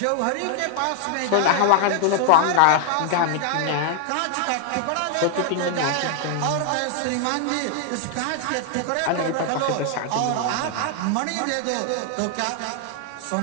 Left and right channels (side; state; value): both; different; correlation 0.00